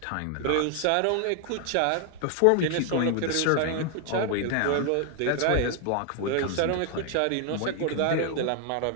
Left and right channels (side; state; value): both; different; correlation 0.00